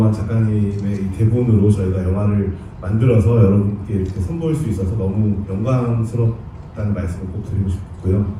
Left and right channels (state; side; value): identical; both; correlation 1.00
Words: 작가님의 이 대본으로 저희가 영화를 만들어서 여러분께 이렇게 선보일 수 있어서 너무 영광스럽다는 말씀을 꼭 드리고 싶고요.